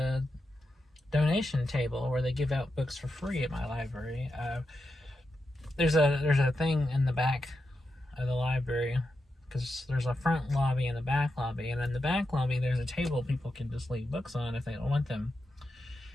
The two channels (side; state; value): both; normal; correlation 0.87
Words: donation table where they give out books for free at my library. There's a thing in the back of the library, because there's a front lobby and a back lobby, and in the back lobby there's a table people can just leave books on if they don't want them,